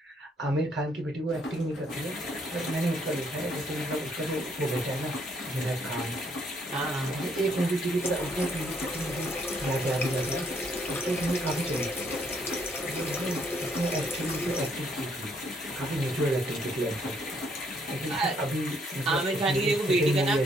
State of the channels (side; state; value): both; normal; correlation 0.70